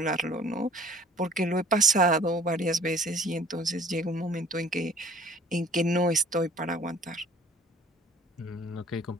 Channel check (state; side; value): normal; both; correlation 0.50